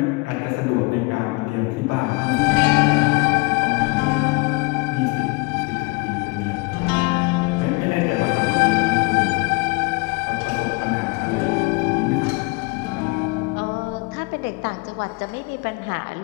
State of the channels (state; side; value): quieter; right; 26.6 dB